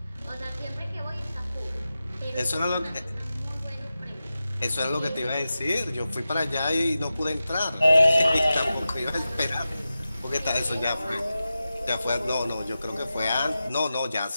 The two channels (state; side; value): inverted; both; correlation -0.93